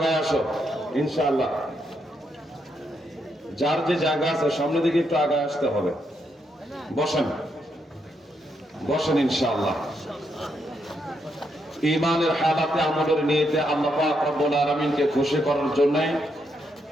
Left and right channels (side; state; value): both; normal; correlation 0.79